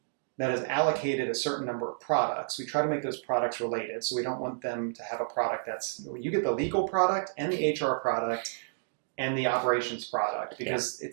that has allocated a certain number of products, we try to make those products related. So we don't want them to have a product you get the legal product and the HR product and the operations product, because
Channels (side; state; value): left; silent; digital silence